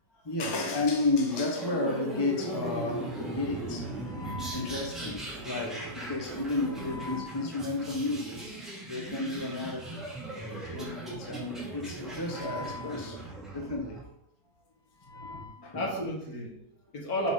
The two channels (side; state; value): both; normal; correlation -0.17